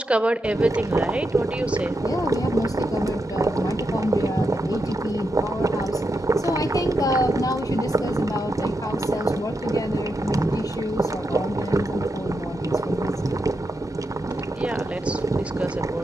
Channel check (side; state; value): both; normal; correlation 0.85